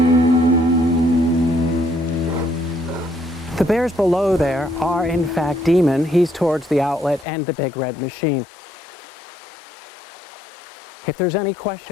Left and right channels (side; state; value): right; drops out; at 7.2 s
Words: The bears below there are, in fact, Demon. He's towards the outlet, and the big red machine. If there's any